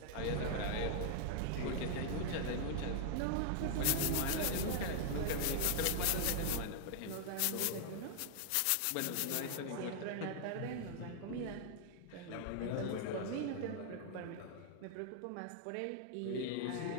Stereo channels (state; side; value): different; both; correlation 0.00